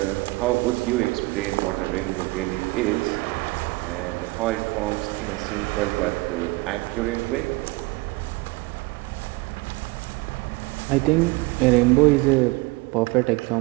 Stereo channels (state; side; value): quieter; left; 23.4 dB